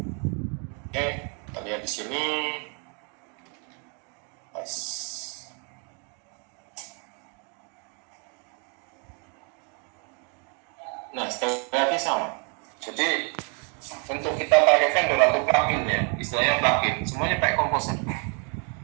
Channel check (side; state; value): left; quieter; 36.8 dB